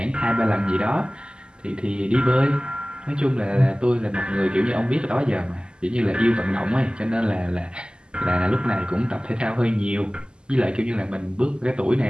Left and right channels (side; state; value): left; late; 0.048 ms